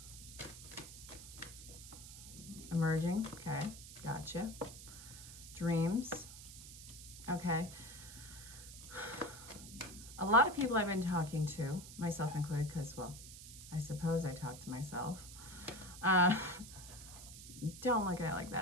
Emerging, okay, gotcha. Dreams, okay. A lot of people I've been talking to, myself included, because, well, I suppose I talk to myself. Don't look at it like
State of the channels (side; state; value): right; noise; hiss, 14 dB below the sound